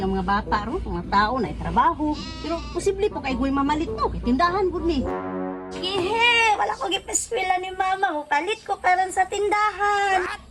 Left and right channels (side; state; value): both; identical; correlation 1.00